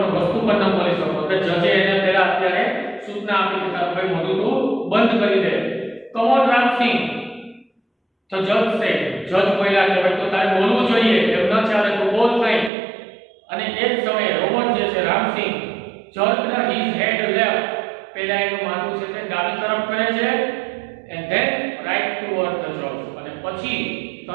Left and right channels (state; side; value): drops out; left; at 12.7 s